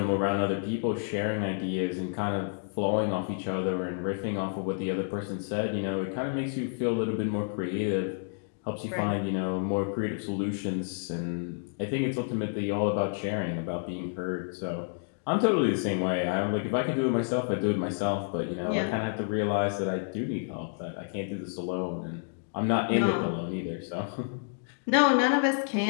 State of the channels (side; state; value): right; silent; digital silence